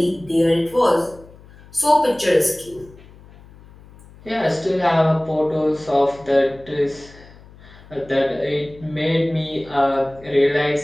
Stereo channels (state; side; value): noise; left; hum, 23 dB below the sound